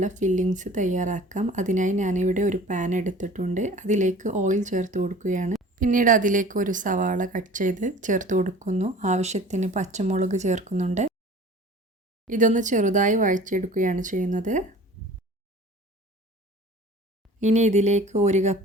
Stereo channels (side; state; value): both; normal; correlation 0.44